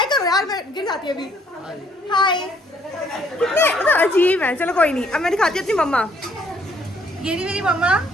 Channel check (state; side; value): normal; both; correlation 0.65